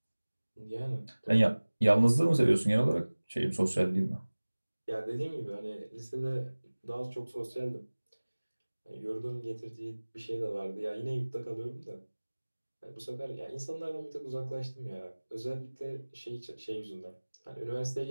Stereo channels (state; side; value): inverted; both; correlation -1.00